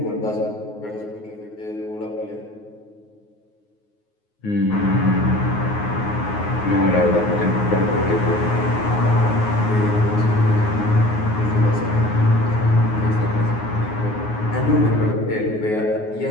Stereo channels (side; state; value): right; late; 9.5 ms